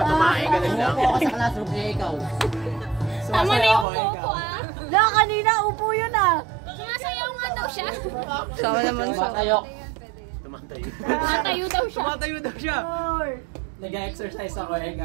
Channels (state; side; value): drops out; left; at 3.9 s